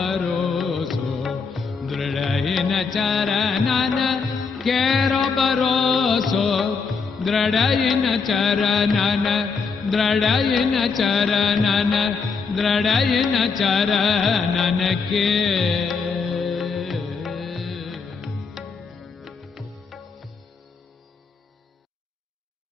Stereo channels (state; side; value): quieter; right; 5.1 dB